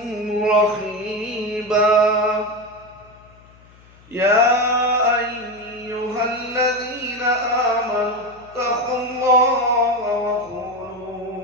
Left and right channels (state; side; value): noise; left; hum, 26 dB below the sound